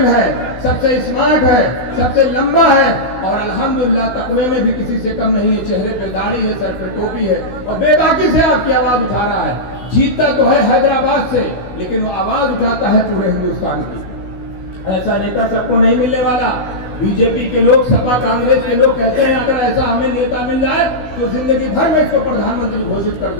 है, सबसे स्मार्ट है, सबसे लंबा है, और अल्हम्दुलिल्लाह तकवे में भी किसी से कम नहीं है। चेहरे पे दाढ़ी है, सर पे टोपी है, और बेबाकी से आपकी आवाज उठा रहा है। जीतता तो है हैदराबाद से, लेकिन वो आवाज उठाता है पूरे हिंदुस्तान की। ऐसा नेता सबको नहीं मिलने वाला। बीजेपी के लोग, सपा कांग्रेस के लोग कहते हैं अगर ऐसा हमें नेता मिल जाए तो जिंदगी भर में इसको प्रधानमंत्री घोषित कर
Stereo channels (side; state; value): right; late; 15 ms